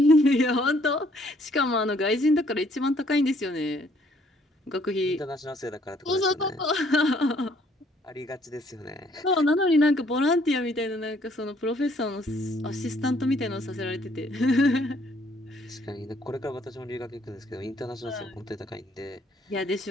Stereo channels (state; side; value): normal; both; correlation 0.64